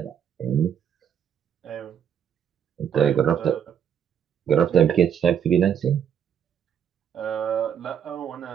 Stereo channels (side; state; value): left; quieter; 8.4 dB